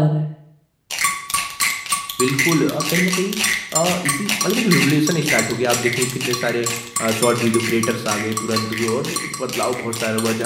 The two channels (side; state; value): both; identical; correlation 1.00